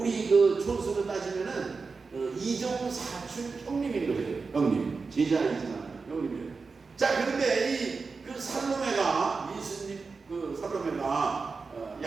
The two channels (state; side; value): quieter; left; 4.5 dB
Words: 그 촌수로 따지면은 이종사촌 형님인 거죠. 형님, 제자이지만 형님이에요. 자, 그런데 이 그 살로메가 예수님 그 살로메가